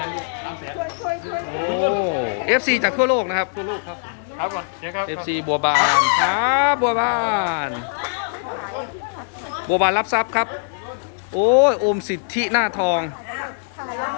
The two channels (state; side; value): silent; right; digital silence